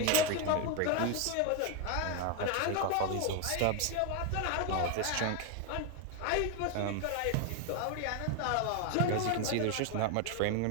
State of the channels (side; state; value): both; different; correlation 0.01